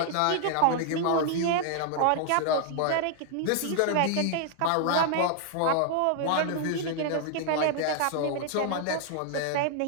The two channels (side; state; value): both; different; correlation 0.00